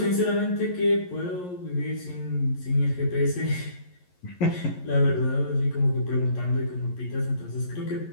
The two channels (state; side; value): late; right; 11 ms